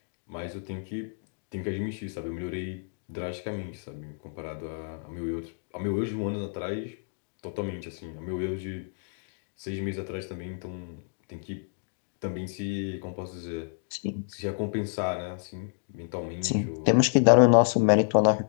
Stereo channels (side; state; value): right; silent; digital silence